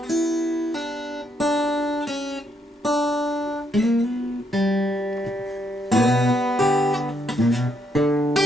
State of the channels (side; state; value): both; normal; correlation 0.76